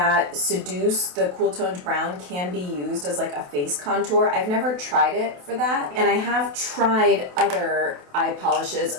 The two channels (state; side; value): late; left; 28 ms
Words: Seduce, the cool toned brown, can be used as like a face contour. I've never tried it for that, and I have tried other eye polishes.